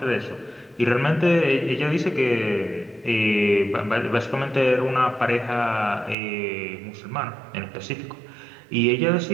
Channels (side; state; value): left; drops out; at 6.2 s